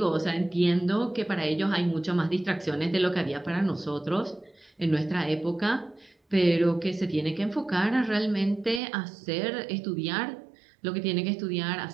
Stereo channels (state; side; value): drops out; left; at 8.8 s